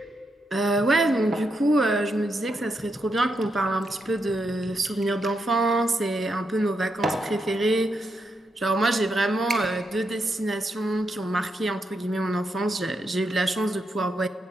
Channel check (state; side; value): normal; both; correlation 0.82